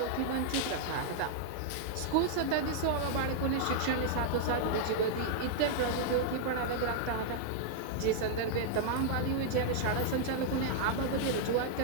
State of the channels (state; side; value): different; both; correlation -0.01